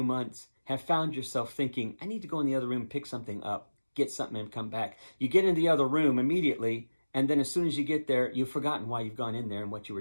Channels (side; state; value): both; inverted; correlation -1.00